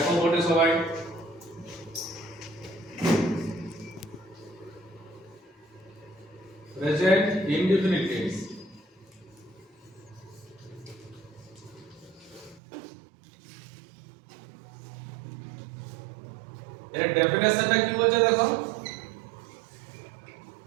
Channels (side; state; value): left; drops out; at 12.6 s